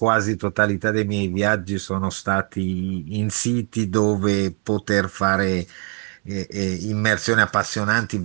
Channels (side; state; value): left; quieter; 39.2 dB